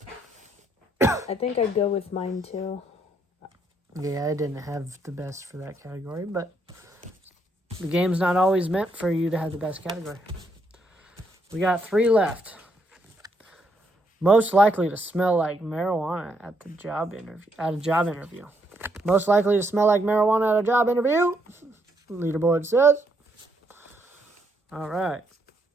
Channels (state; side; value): normal; both; correlation 0.74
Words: I think I'd go with mine too. Yeah, I didn't have the best for that category, but the game's not always meant for you to have the best category. We got 3 left. Most likely to smell like marijuana at the job interview. At a job interview. Most likely to smell like marijuana at a job interview. Leaderboard says. All right.